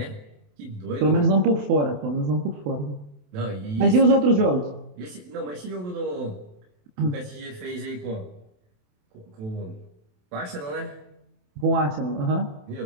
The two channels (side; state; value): left; late; 27 ms